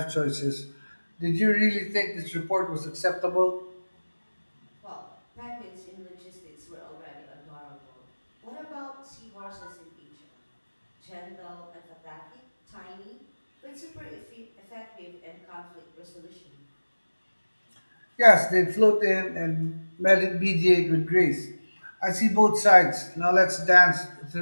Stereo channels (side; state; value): both; inverted; correlation -1.00